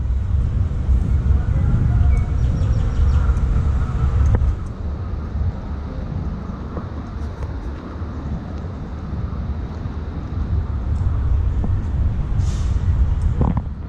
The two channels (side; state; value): both; identical; correlation 1.00